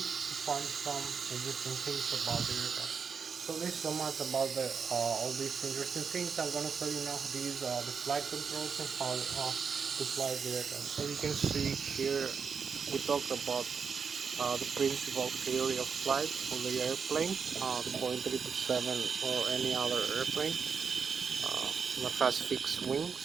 to find some interesting things about the aircraft. So this is so much about all these interesting things. I'm going to show you now how to use the flight controls and how to fly the aircraft. So you can see here we talked about the principal theory of flight for the airplane, the Boeing 777 or any other airplane that has fixed wings.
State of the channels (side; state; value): left; quieter; 6.0 dB